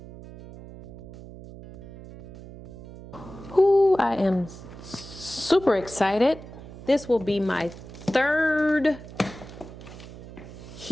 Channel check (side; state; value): right; noise; hum, 15 dB below the sound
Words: Ooh, I am super excited. This will be my third